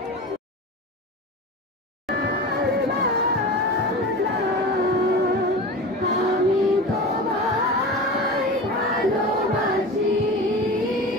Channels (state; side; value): normal; both; correlation 0.31